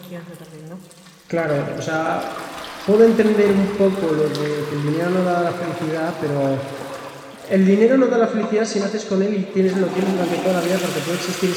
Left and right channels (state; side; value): identical; both; correlation 1.00